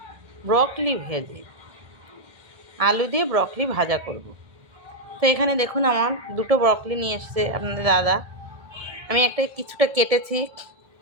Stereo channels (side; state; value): left; late; 1.7 ms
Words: ব্রকলি ভেজে, আলু দিয়ে ব্রকলি ভাজা করব। তো এখানে দেখুন আমার দুটো ব্রকলি নিয়ে এসছে আপনাদের দাদা। আমি কিছুটা কেটেছি,